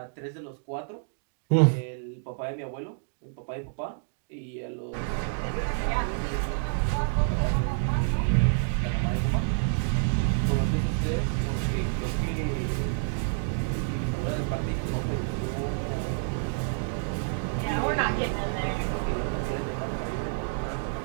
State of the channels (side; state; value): left; silent; digital silence